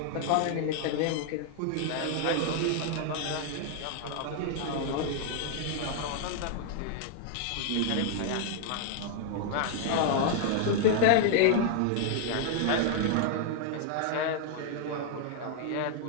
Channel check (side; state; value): both; different; correlation 0.00